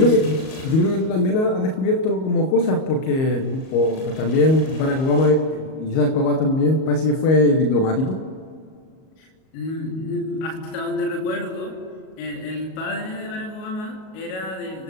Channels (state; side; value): late; right; 38 ms